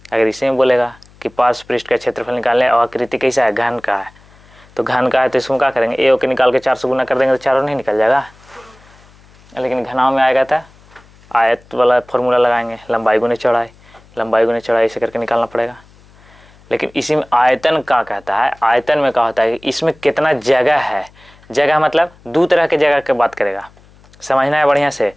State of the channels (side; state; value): left; noise; hum, 27 dB below the sound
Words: अगर इसी में बोलेगा कि पार्श्व पृष्ठ का क्षेत्रफल निकालने और आकृति कैसा है, घन का है, तो घन का है तो इसमें क्या करेंगे, ए के निकाल के 4 से गुना कर देंगे तो चारों नहीं निकल जाएगा। लेकिन घनाव में आएगा था आयत वाला फॉर्मूला लगाएंगे, लंबाई गुने चौड़ाई, लंबाई गुने चौड़ाई ऐसे करके निकालना पड़ेगा। लेकिन इसी में आयतन का कहता है, आयतन में क्या होता है कि इसमें कितना जगह है, जगह मतलब 2 तरह के जगह की बात करेगा, समझना है बढ़िया से।